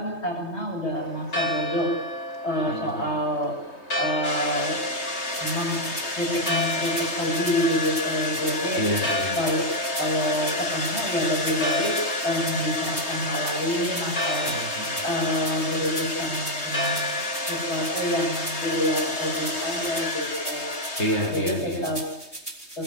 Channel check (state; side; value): late; right; 3.2 ms